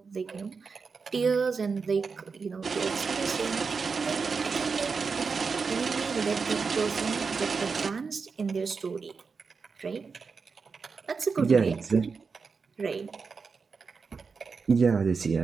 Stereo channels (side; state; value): left; quieter; 5.1 dB